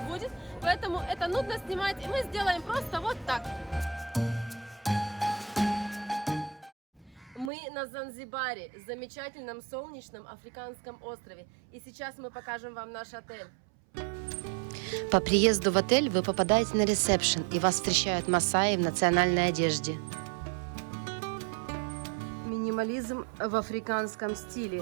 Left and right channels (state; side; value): drops out; left; at 7.5 s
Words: поэтому это нудно снимать, и мы сделаем просто вот так. Мы на Занзибаре, замечательном солнечном африканском острове. И сейчас мы покажем вам наш отель. По приезду в отель вы попадаете на ресепшн, и вас встречают масаи в национальной одежде. Минимализм в африканском